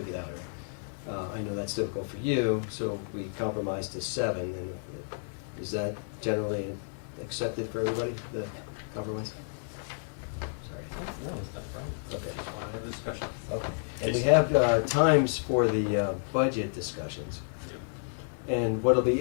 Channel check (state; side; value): silent; right; digital silence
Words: get out earlier. I know that's difficult for you, so we compromised to 7, and is that generally accepted for everybody, the compromise? Sorry. No, that's not a problem. Okay. Just want to have a discussion. Okay. And we have times for the budget discussions. And what'll be